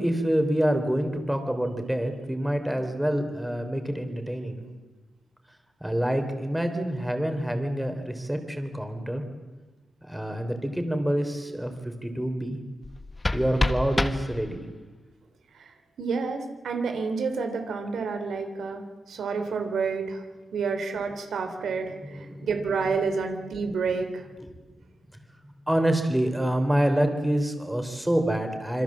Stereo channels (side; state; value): both; normal; correlation 0.93